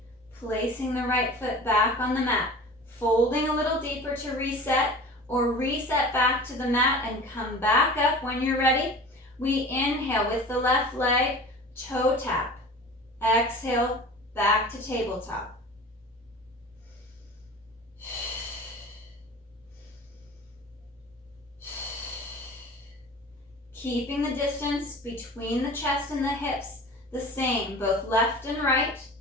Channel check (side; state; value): both; normal; correlation 0.39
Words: placing the right foot back on the mat, folding a little deeper to reset, or reset back to the mat and come back up when you're ready. We inhale with the left leg, toe tap. Exhale, back to tabletop. Keeping the distance between the chest and the hips the same, both left and right.